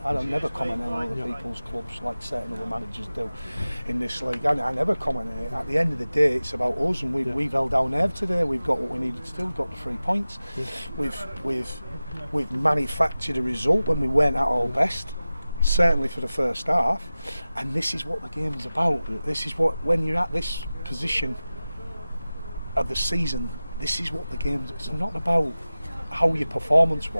I don't never comment on other people's clubs like certain other managers do in this league. I never comment on it. At the end of the day, it's about us, and we've held our nerve today. We've got what we needed to do. We've got the 3 points. We've manufactured a result when we weren't at our best, certainly for the first half, and this is what the game's about. This is what, when you're at this position of the season, this is what the game's. It's not about how your performance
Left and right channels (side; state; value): both; inverted; correlation -0.96